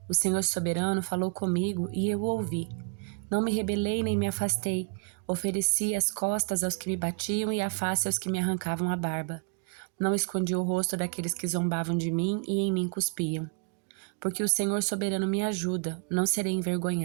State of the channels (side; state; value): left; quieter; 34.8 dB